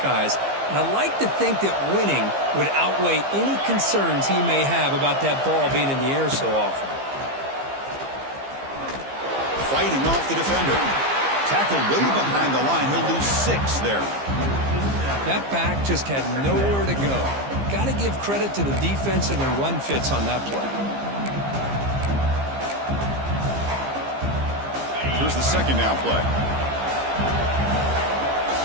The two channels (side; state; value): left; late; 15 ms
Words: And I like to think that winning would outweigh any concerns he may have about that ball being in the air so often. fighting off the defender. Tackled way behind the line. He'll lose 6 there. That back just had nowhere to go. Got to give credit to the defense and their run fits on that play. Here's the second down play.